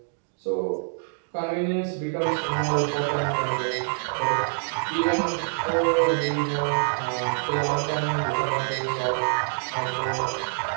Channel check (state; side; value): silent; left; digital silence